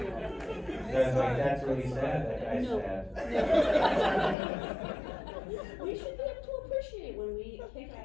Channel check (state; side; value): drops out; right; at 4.4 s